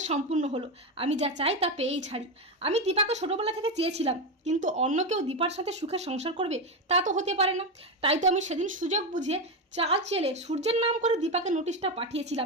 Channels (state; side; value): normal; both; correlation 0.12